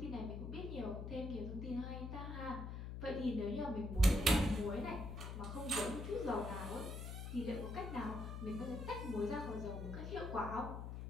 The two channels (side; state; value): left; noise; hum, 6 dB below the sound